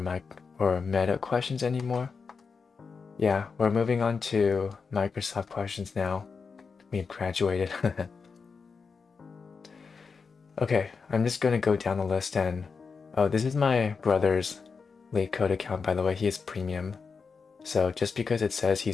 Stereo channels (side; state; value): right; quieter; 5.2 dB